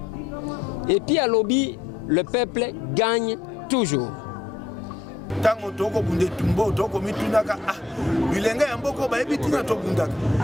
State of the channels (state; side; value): quieter; right; 3.7 dB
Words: Et puis à Lobby, le peuple gagne toujours. Tango toko bunde tumbo toko mitunaka bilenge ya mboko ba ebitina to bundaka